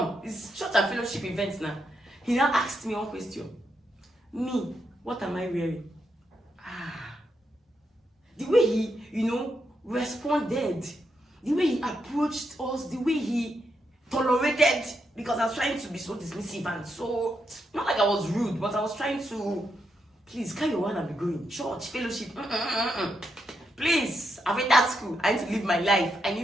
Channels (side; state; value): both; normal; correlation 0.82